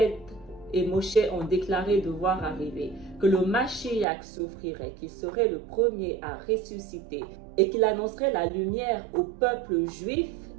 et Moshe ont déclaré devoir arriver, que le Mashiach souffrirait, qu'il serait le premier à ressusciter et qu'il annoncerait la lumière au peuple juif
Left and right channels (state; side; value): drops out; left; at 4.0 s